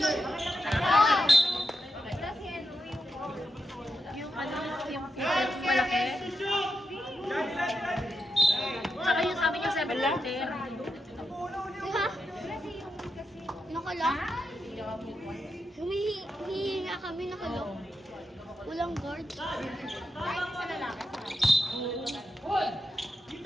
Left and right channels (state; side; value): normal; both; correlation 0.86